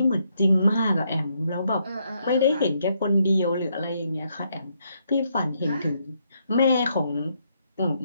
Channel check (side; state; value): both; inverted; correlation -0.76